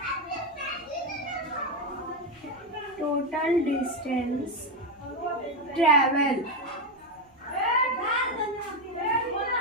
टोटल डिस्टेंस ट्रेवल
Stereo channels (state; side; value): normal; both; correlation 0.09